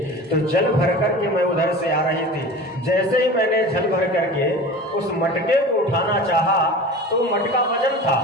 तो जल भर करके मैं उधर से आ रही थी, जैसे ही मैंने जल भर करके उस मटके को उठाना चाहा तो मटका वजन था।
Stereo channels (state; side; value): normal; both; correlation 0.36